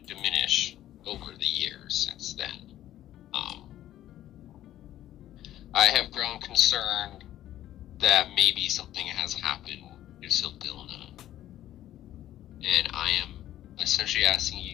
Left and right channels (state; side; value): quieter; right; 13.0 dB